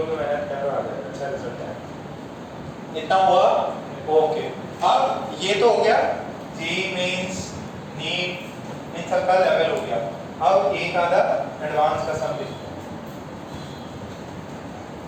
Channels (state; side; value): identical; both; correlation 1.00